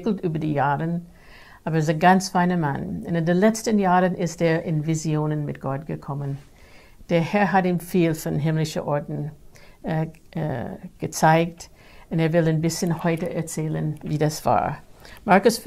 über die Jahre, aber er ist ein ganz feiner Mann. Und in den letzten Jahren ist er in Visionen mit Gott gekommen. Der Herr hat ihm viel von himmlischen Orten gezeigt und er will ein bisschen heute erzählen, wie das war. Markus,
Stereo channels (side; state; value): both; identical; correlation 1.00